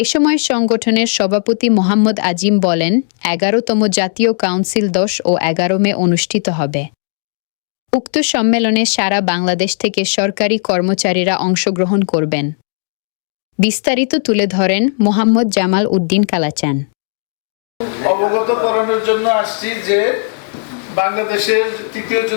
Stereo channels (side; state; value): right; silent; digital silence